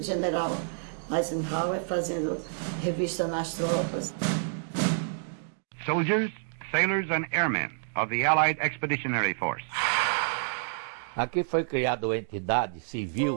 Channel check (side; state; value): left; silent; digital silence